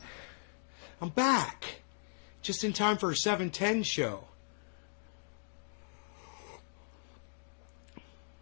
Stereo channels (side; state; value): right; silent; digital silence